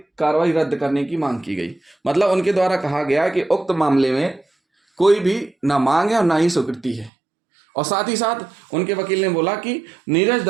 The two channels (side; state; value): left; drops out; at 7.1 s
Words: कार्रवाई रद्द करने की मांग की गई। मतलब उनके द्वारा कहा गया कि उक्त मामले में कोई भी ना मांग है और ना ही स्वीकृति है। और साथ ही साथ उनके वकील ने बोला कि नीरज